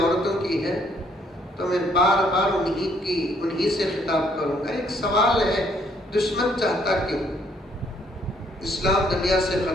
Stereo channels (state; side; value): normal; both; correlation 0.67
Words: की है तो मैं बार बार उन्हीं से खिताब करूंगा। एक सवाल है, दुश्मन चाहता क्यों इस्लाम दुनिया से